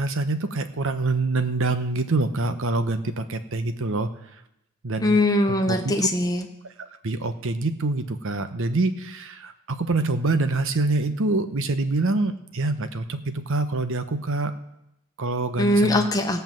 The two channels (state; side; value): normal; both; correlation 0.56